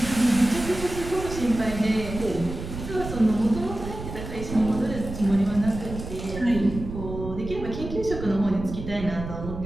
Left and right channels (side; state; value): right; noise; rumble, 9 dB below the sound